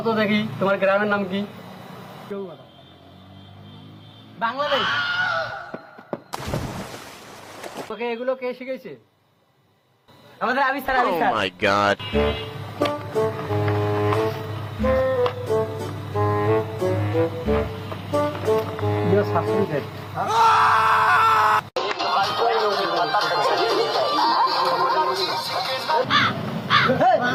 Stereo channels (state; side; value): identical; both; correlation 1.00